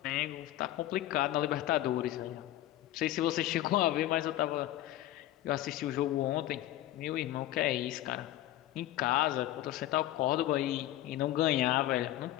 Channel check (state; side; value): quieter; right; 14.5 dB